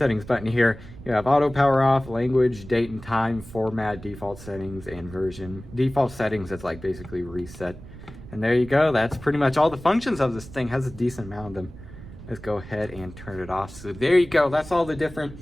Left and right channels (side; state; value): right; noise; rumble, 16 dB below the sound